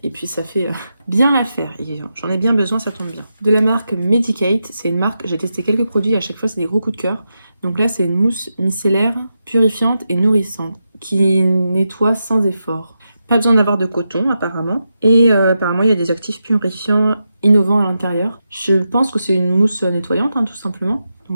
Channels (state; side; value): inverted; both; correlation -0.87